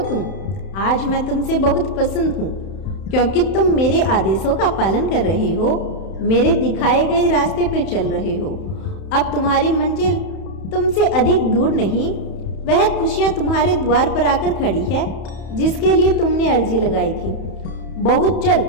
आज मैं तुमसे बहुत पसंद हूँ क्योंकि तुम मेरे आदेशों का पालन कर रहे हो, मेरे दिखाए गए रास्ते पे चल रहे हो। अब तुम्हारी मंजिल तुमसे अधिक दूर नहीं, वह खुशियाँ तुम्हारे द्वार पर आकर खड़ी है जिसके लिए तुमने अर्जी लगाई थी। बहुत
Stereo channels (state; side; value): late; right; 31 ms